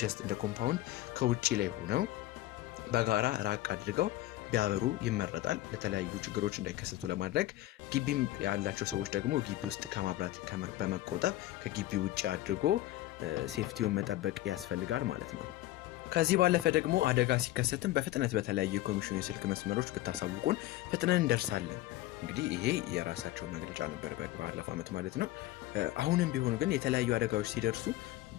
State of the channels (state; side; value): quieter; right; 16.0 dB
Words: ጀስት እንደ ኮምፓውንድ ከውጪ ላይ ሆነው በጋራ ራቅ አድርገው ቢያበሩ ይመረጣል። ለተለያዩ ችግሮች እንዳይከሰቱ ለማድረግ ግቢም ያላቸው ሰዎች ደግሞ ግቢ ውስጥ ከማብራት በመቆጠብ ከግቢ ውጪ አድርጎ ሴፍቲውን መጠበቅ ያስፈልጋል ማለት ነው። ከዚህ ባለፈ ደግሞ አደጋ ሲከሰትም በፍጥነት በተለያዩ የኮሚሽኑ የስልክ መስመሮች ብታሳውቁን ፍጥነን እንደርሳለን። እንግዲህ ይሄ የራሳቸው መግለጫ ነበር ባለፈው ዓመት ማለት ነው። አሁንም ቢሆን ግን የተለያዩ አደጋዎች ሲደርሱ